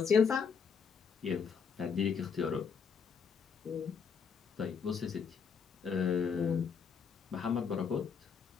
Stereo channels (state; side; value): quieter; right; 6.3 dB